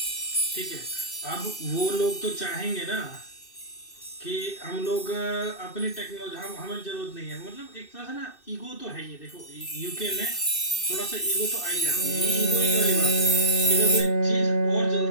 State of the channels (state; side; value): late; right; 2.6 ms